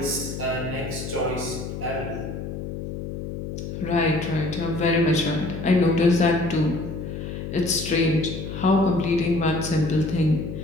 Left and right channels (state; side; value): noise; left; hum, 7 dB below the sound